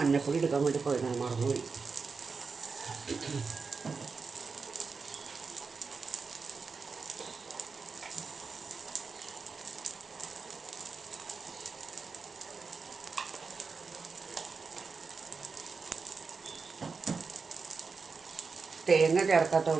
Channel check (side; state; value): left; quieter; 4.8 dB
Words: എടുക്കാൻ വേണ്ടി പോയതാണ്, മറന്നുപോയി. തേങ്ങ